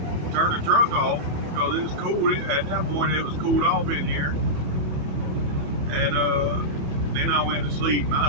turned the truck off because it was cool. At that point it was cooled off in here. And then I went to sleep, and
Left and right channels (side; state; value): left; late; 28 ms